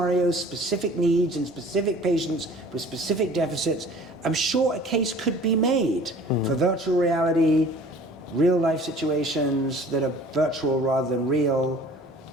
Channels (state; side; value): normal; both; correlation 0.48